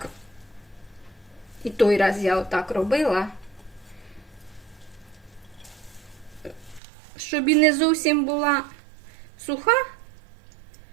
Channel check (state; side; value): drops out; left; at 6.8 s